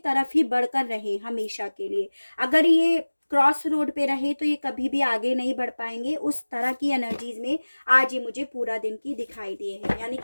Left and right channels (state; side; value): inverted; both; correlation -1.00